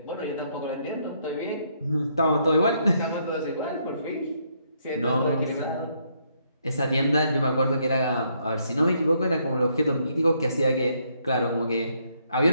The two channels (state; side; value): inverted; both; correlation -0.73